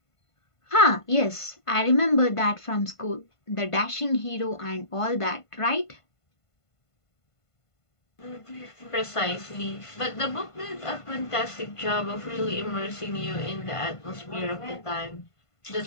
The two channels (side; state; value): right; late; 1.5 ms